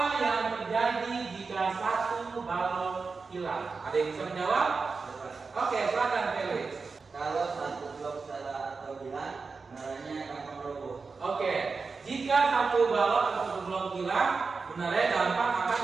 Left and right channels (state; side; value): quieter; left; 4.6 dB